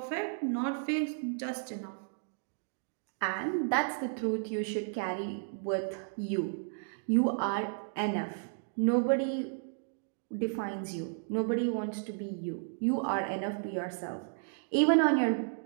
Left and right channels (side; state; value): left; silent; digital silence